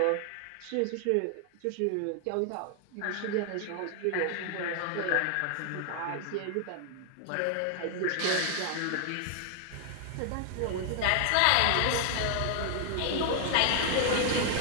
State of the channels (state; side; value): different; both; correlation 0.00